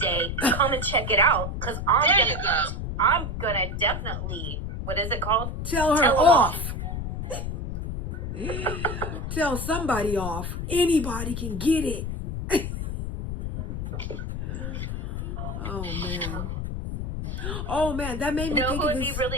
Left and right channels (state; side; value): noise; left; rumble, 4 dB below the sound